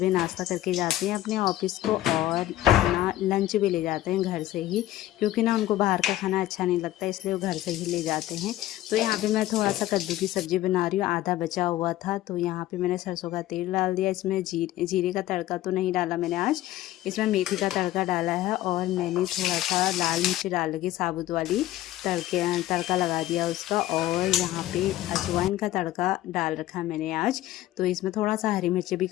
नाश्ता करके जाते हैं अपने ऑफिस को, और अपना लंच भी ले जाते हैं घर से ही, क्योंकि ना उनको बाहर का खाना अच्छा नहीं लगता, इसलिए वो घर से ही ले जाते हैं। तो यहाँ पे मैं थोड़ा सा कद्दू की सब्ज़ी बना रही हूँ, आधा बचा हुआ था। तो यहाँ पे मैंने सरसों का तेल डाल दिया। इसमें जीरे का तड़का तो नहीं डाला मैंने आज, इसमें मेथी का तड़का डाला है। और मैंने थोड़ा सा लाल मिर्च डाल के साबुत वाली तड़का लगा दिया उसका। और यहाँ पे अजवाइन का तड़का डाल रखा मैंने आज। तो इसमें थोड़ा सा हरी मिर्च भी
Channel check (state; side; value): quieter; right; 14.6 dB